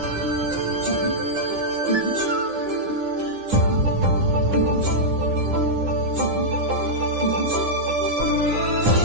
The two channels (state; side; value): late; left; 9.8 ms